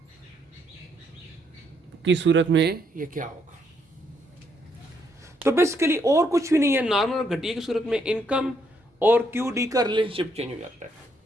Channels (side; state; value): both; normal; correlation 0.73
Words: की सूरत में ये क्या होगा। तो बेसिकली और कुछ भी नहीं है, नॉर्मल और घटिया की सूरत में इनकम और क्यू डी का रिलेशनशिप चेंज हो जाता है।